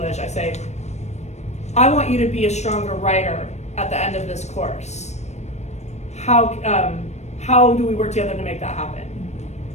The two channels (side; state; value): right; late; 0.32 ms